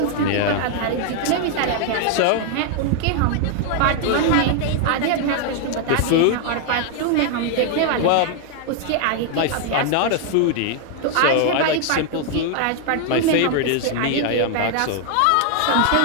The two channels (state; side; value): different; both; correlation 0.00